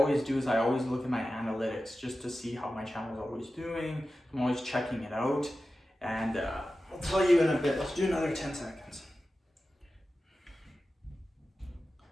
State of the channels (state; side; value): normal; both; correlation 0.94